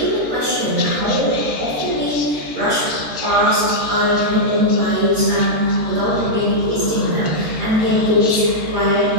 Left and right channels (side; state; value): left; late; 13 ms